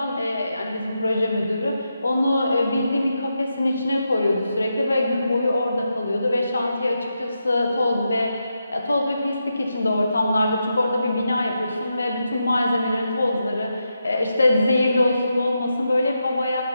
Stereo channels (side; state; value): both; inverted; correlation -0.86